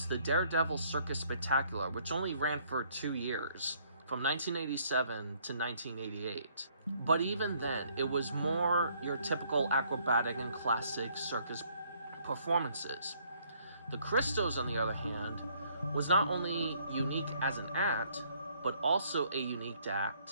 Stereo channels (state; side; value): inverted; both; correlation -0.65